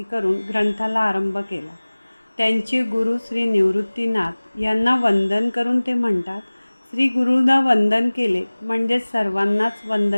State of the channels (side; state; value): both; inverted; correlation -1.00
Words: करून ग्रंथाला आरंभ केला. त्यांचे गुरु श्री निवृत्तीनाथ यांना वंदन करून ते म्हणतात, श्री गुरुला वंदन केले म्हणजे सर्वांनाच